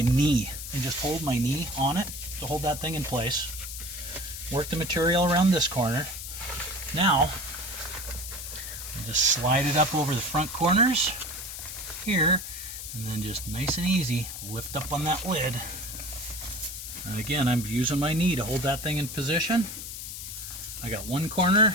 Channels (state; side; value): noise; left; hiss, 8 dB below the sound